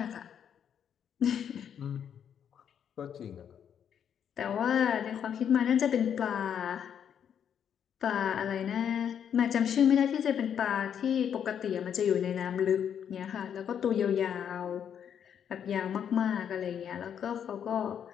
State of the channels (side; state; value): right; quieter; 8.5 dB